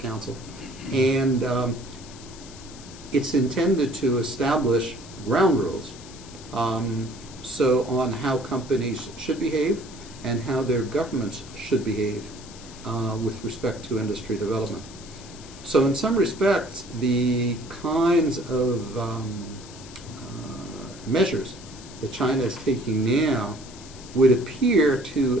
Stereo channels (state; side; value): noise; left; hiss, 18 dB below the sound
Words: And it's intended to establish ground rules so on how companies should behave and how their governments should behave with respect to industry development. So in some respects, the kinds of measures that China is taking now would appear